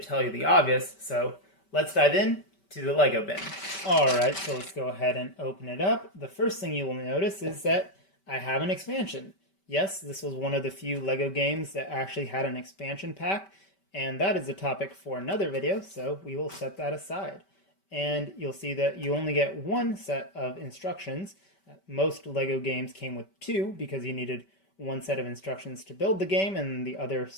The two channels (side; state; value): right; late; 5.2 ms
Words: tell you the obvious, so let's dive in to the Lego bin. Alright, so let's go ahead and open it up. The first thing you will notice is that I have an expansion. Yes, this was one of the few Lego games that actually had an expansion pack, and that is a topic for another video, so we will set that aside. And you'll see that you only get one set of instructions. Most Lego games came with two because you needed one set of instructions to build the game and the other